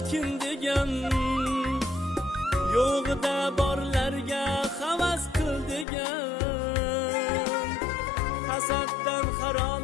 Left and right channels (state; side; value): drops out; right; at 5.9 s